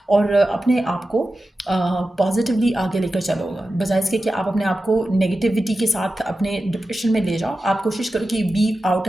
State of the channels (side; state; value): both; normal; correlation 0.93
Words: और अपने आप को पॉजिटिवली आगे लेकर चलो, बजाय इसके कि आप अपने आप को नेगेटिविटी के साथ अपने डिप्रेशन में ले जाओ। आप कोशिश करो कि बी आउट